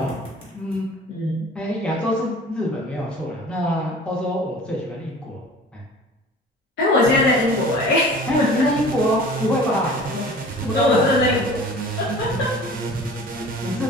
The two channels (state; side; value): normal; both; correlation 0.44